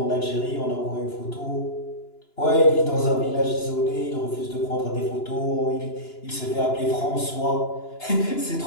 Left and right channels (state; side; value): late; right; 2.9 ms